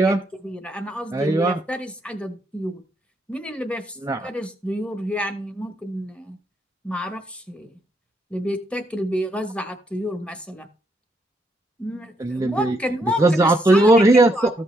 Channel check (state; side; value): normal; both; correlation 0.75